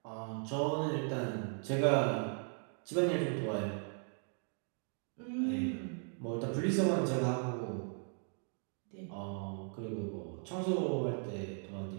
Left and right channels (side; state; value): left; silent; 53 dB below the other